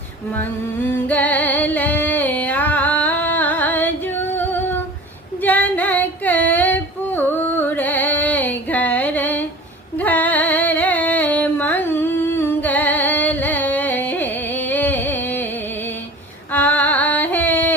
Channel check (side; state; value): both; normal; correlation 0.40